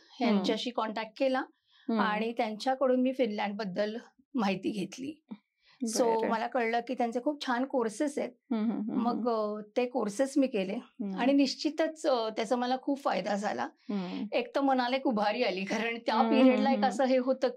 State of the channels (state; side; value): identical; both; correlation 1.00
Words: यांच्याशी कॉन्टॅक्ट केला आणि त्यांच्याकडून मी फिनलँड बद्दल माहिती घेतली. सो मला कळलं की त्यांचे खूप छान कोर्सेस आहेत. मग ते कोर्सेस मी केले आणि निश्चितच त्याचा मला खूप फायदा झाला. एक तर मनाला एक उभारी आली, कारण त्या पिरियडला एक असं हे होतं